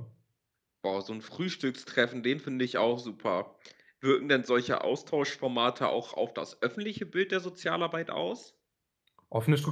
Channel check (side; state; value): both; identical; correlation 1.00